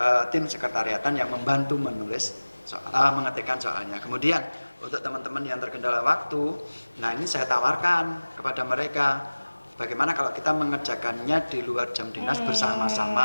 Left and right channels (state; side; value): inverted; both; correlation -1.00